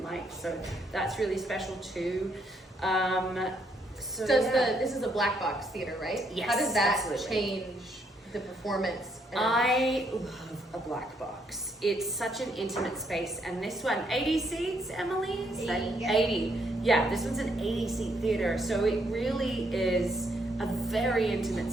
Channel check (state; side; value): normal; both; correlation 0.73